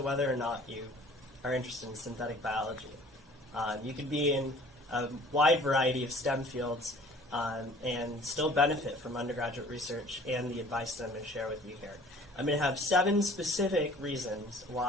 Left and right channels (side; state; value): both; normal; correlation 0.50